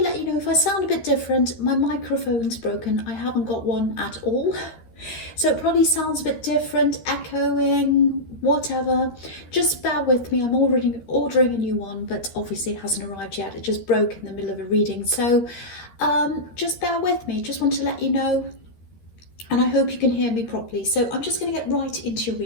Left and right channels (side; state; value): right; late; 13 ms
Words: let you know if I sound a bit different, my microphone's broken. I haven't got one at all. So it probably sounds a bit different, echoing, whatever. Just bear with me. I'm already ordering a new one, but obviously it hasn't arrived yet. It just broke in the middle of a reading. So just bear with me. Just want to let you know. And I hope you can hear me properly. So I'm just going to get right into your